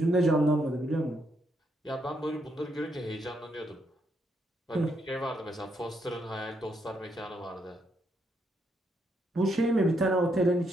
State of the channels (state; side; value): normal; both; correlation 0.77